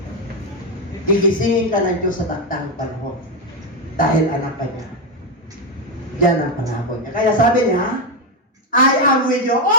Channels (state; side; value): normal; both; correlation 0.08